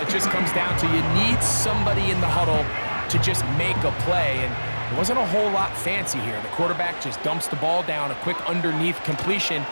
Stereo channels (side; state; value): both; inverted; correlation -1.00